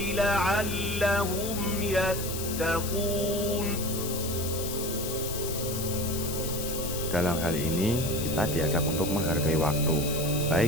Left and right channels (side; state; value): left; noise; hiss, 6 dB below the sound